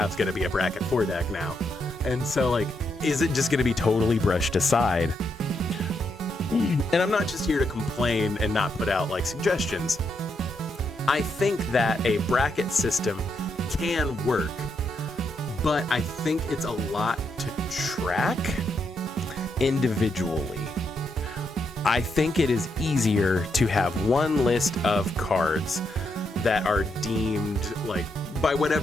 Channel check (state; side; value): normal; both; correlation 0.80